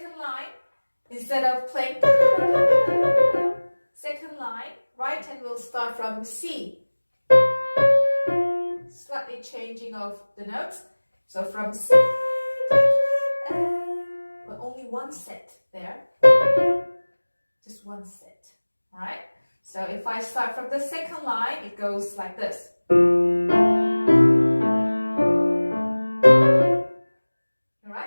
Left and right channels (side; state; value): both; inverted; correlation -1.00